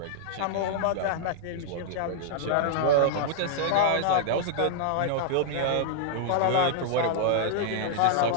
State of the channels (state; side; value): different; both; correlation -0.01